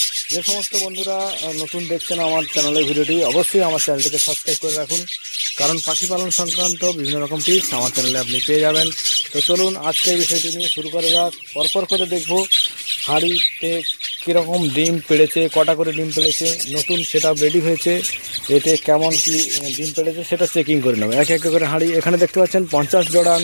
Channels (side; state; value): both; inverted; correlation -1.00